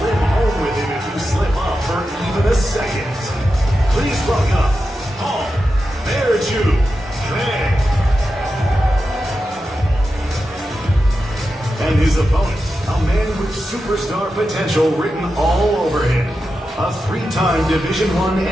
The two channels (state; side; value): normal; both; correlation 0.90